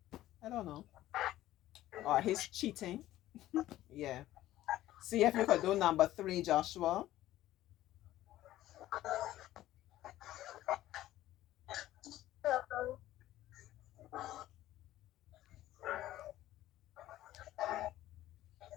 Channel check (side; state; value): right; quieter; 14.6 dB